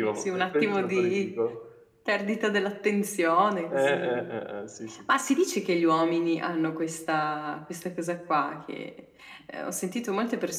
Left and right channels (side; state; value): both; identical; correlation 1.00